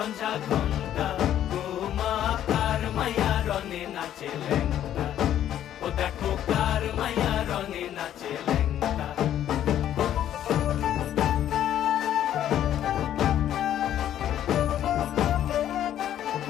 ঘণ্টা গোমা। কার মাইয়া রনে নাচে ল্যাংটা, ও দেখো কার মাইয়া রনে নাচে ল্যাংটা।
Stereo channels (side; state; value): right; quieter; 11.2 dB